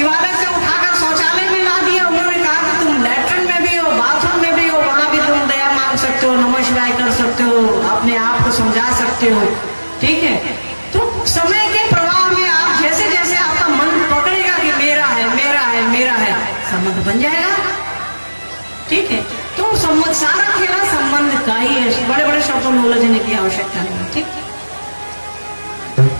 से उठाकर शौचालय में ला दिया। उन्होंने कहा कि तुम लैट्रिन में भी हो, बाथरूम में भी हो, वहां भी तुम दया मांग सकते हो, नमः शिवाय कर सकते हो, अपने आप को समझा सकते हो, ठीक है। तो समय के प्रवाह में आप जैसे जैसे आपका मन पकड़ेगा कि मेरा है मेरा है मेरा है, संबंध बन जाएगा, ठीक है। तो संबंध, सारा खेला संबंध का ही है। बड़े बड़े शब्दों में उलझने की आवश्यकता नहीं, ठीक।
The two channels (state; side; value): inverted; both; correlation -1.00